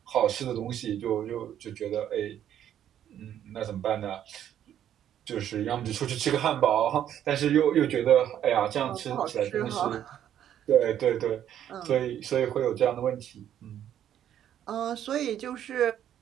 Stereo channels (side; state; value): left; quieter; 10.5 dB